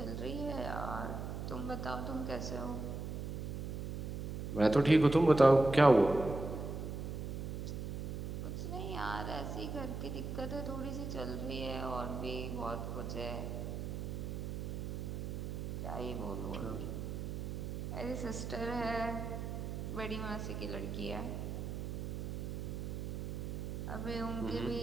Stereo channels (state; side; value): noise; right; hum, 4 dB below the sound